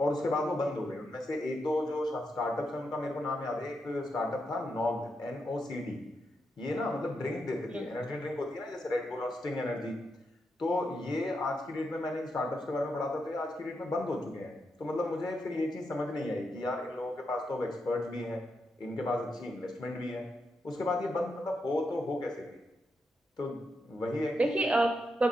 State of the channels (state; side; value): normal; both; correlation 0.84